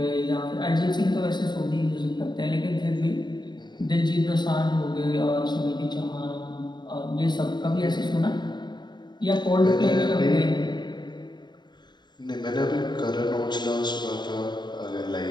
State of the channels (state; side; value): late; right; 0.21 ms